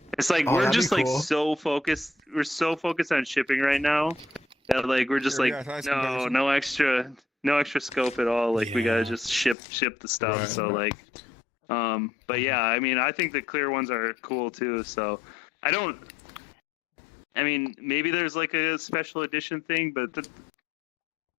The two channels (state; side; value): drops out; right; at 9.6 s